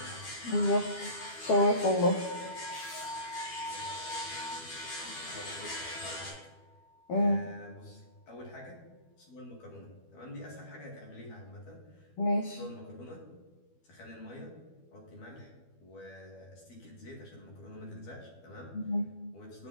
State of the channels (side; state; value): right; late; 12 ms